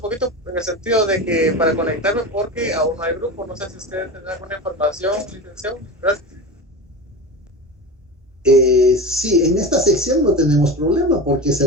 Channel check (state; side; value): normal; both; correlation 0.27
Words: poquito en el sentido de que para conectarme, porque aún no hay grupo. No sé si ustedes tienen alguna información, licenciado. Gracias. Sí, en esta sección no tenemos problema porque se